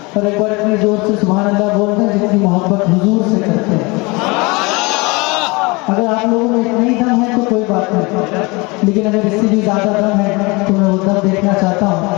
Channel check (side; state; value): right; quieter; 25.9 dB